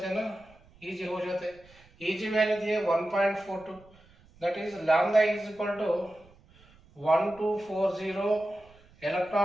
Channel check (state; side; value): noise; right; rumble, 27 dB below the sound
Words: हैं ना, Eg हो जाते हैं, Eg वैल्यू दिए 1.42, that is lambda is equal to 1240